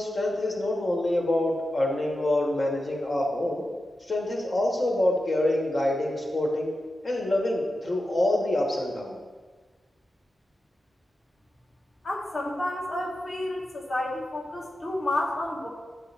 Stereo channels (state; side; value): normal; both; correlation 0.91